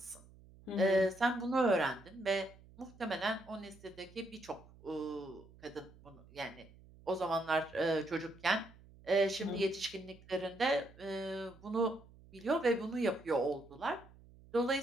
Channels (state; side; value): noise; right; hum, 23 dB below the sound